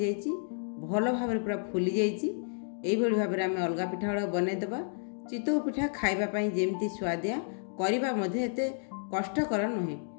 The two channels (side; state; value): right; silent; digital silence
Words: भल भाव पूरा फुली जाइए। यही भाव में आम अलग पिठा गुड़ा बनईदेवा। चितौ पिठा खाइबा जेमती स्वादिया करबा मध्ये एते कष्टकर नुहे।